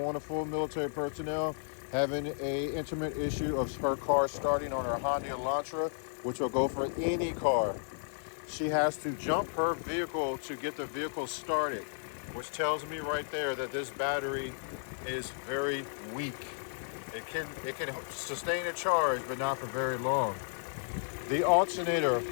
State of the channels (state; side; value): silent; right; digital silence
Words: military personnel having a intimate issue of her car starting on her Honda Elantra, which will go for any car. She has to jump her vehicle to get the vehicle started, which tells me right there that this battery is very weak. It can sustain a charge, but not for very long. The alternator